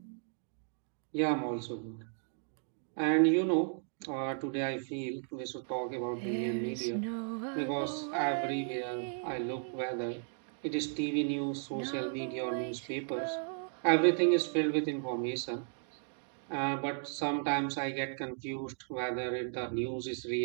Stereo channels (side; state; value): left; silent; 55 dB below the other